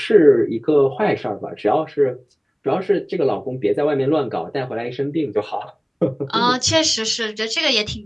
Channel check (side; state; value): both; identical; correlation 1.00